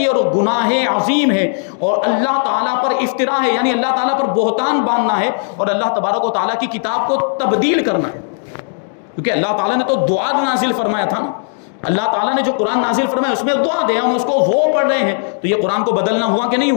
اور گناہ عظیم ہے، اور اللہ تعالیٰ پر افطرا ہے، یعنی اللہ تعالیٰ پر بہتان باندھنا ہے، اور اللہ تبارک و تعالیٰ کی کتاب کو تبدیل کرنا ہے، کیونکہ اللہ تعالیٰ نے تو دعا نازل فرمایا تھا نا، اللہ تعالیٰ نے جو قرآن نازل فرمایا اس میں دعا دے، ہم اس کو وہ پڑھ رہے ہیں، تو یہ قرآن کو بدلنا ہوا کہ نہیں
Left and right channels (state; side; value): silent; right; 68 dB below the other